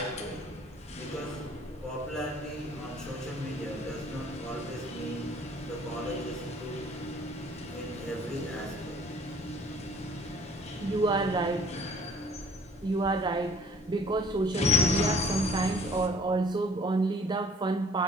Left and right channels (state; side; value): normal; both; correlation 0.55